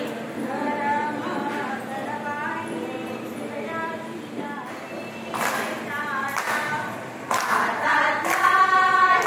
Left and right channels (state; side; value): identical; both; correlation 1.00